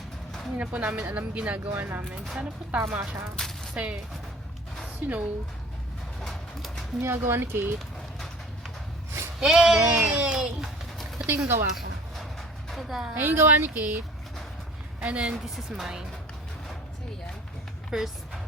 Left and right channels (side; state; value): both; normal; correlation 0.48